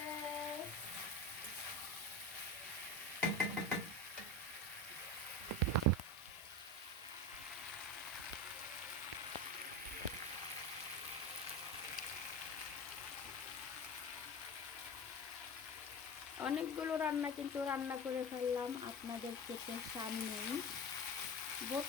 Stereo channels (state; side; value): normal; both; correlation 0.26